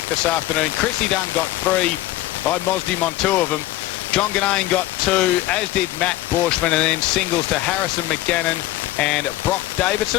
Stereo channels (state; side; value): quieter; right; 16.1 dB